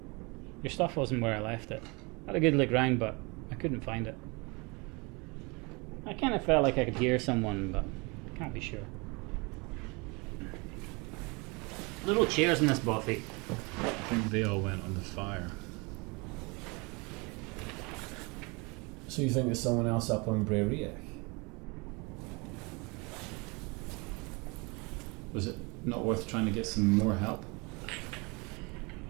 Your stuff wasn't where I left it. I had a good look round, but I couldn't find it. I kind of felt like I could hear someone, but I can't be sure. Little chairs in this bothy. I think they all went on the fire. So you think there's someone else up on Bray Riach? Was it not worth trying to get some more help?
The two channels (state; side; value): quieter; left; 28.3 dB